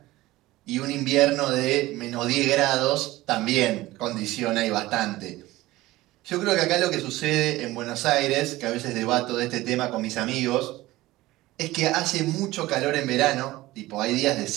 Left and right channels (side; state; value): left; quieter; 17.9 dB